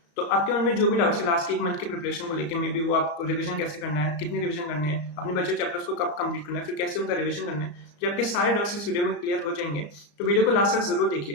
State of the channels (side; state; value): right; late; 35 ms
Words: तो आपके मन में जो भी डाउट्स है लास्ट के एक मंथ के प्रिपरेशन को लेकर, मे बी वो आपको रिवीजन कैसे करना है, कितनी रिवीजन करनी है, अपने बचे चैप्टर्स को कब कंप्लीट करना है, फिर कैसे उनका रिवीजन करना है, जो आपके सारे डाउट्स इस वीडियो में क्लियर हो जाएंगे। तो वीडियो को लास्ट तक जरूर